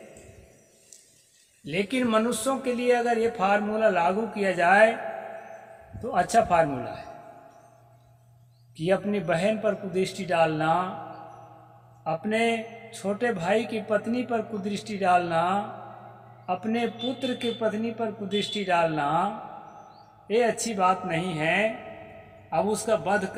लेकिन मनुष्यों के लिए अगर ये फार्मूला लागू किया जाए तो अच्छा फार्मूला है कि अपनी बहन पर कुदृष्टि डालना, अपने छोटे भाई की पत्नी पर कुदृष्टि डालना, अपने पुत्र की पत्नी पर कुदृष्टि डालना, ये अच्छी बात नहीं है। अब उसका वध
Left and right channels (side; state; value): both; identical; correlation 1.00